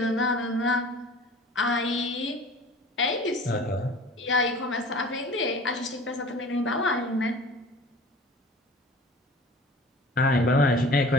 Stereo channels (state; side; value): normal; both; correlation 0.43